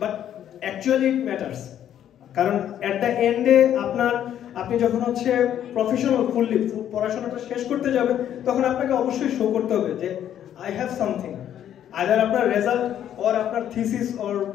but actually it matters. কারণ অ্যাট দ্য এন্ডে আপনি যখন হচ্ছে প্রফেশনাল ফুললি পড়াশোনাটা শেষ করতে যাবেন, তখন আপনাকে অবশ্যই শো করতে হবে যে আই হ্যাভ সামথিং। আইদার আপনার রেজাল্ট অর আপনার থিসিস অর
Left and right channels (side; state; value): right; quieter; 10.4 dB